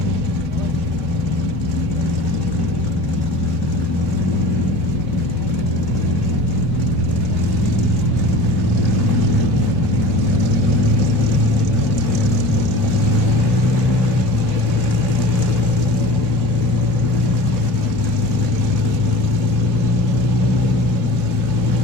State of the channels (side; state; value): both; normal; correlation 0.38